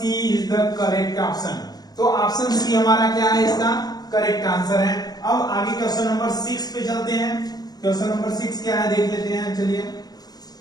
is the correct option. तो ऑप्शन सी हमारा क्या है, इसका करेक्ट आंसर है। अब आगे क्वेश्चन नंबर 6 पे चलते हैं। क्वेश्चन नंबर 6 क्या है देख लेते हैं। चलिए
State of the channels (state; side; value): late; right; 0.19 ms